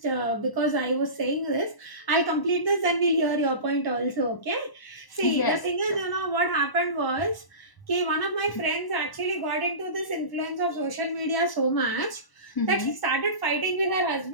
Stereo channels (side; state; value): right; late; 1.0 ms